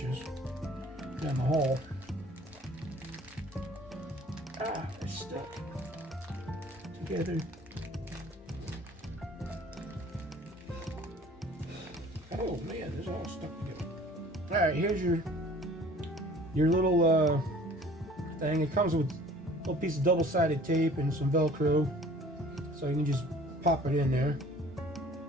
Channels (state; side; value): normal; both; correlation 0.50